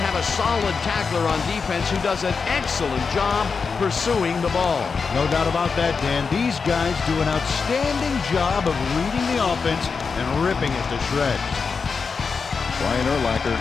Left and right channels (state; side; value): quieter; right; 5.2 dB